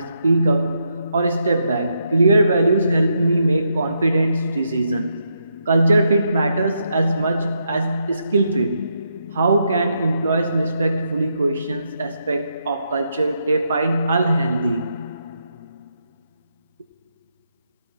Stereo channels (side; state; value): both; inverted; correlation -0.80